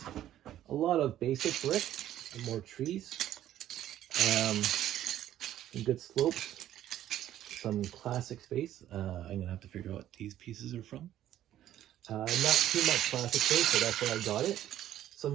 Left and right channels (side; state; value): left; quieter; 12.3 dB